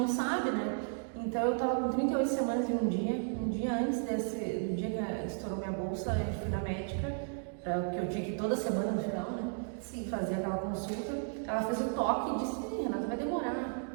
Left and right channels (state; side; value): silent; left; 55 dB below the other